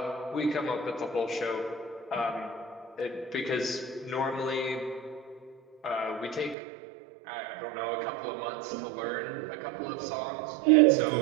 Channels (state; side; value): drops out; left; at 6.6 s